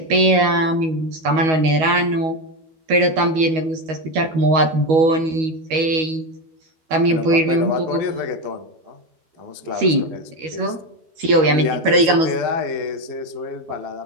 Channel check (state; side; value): late; left; 12 ms